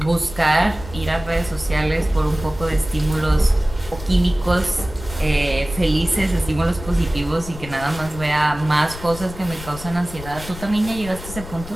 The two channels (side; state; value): left; noise; rumble, 13 dB below the sound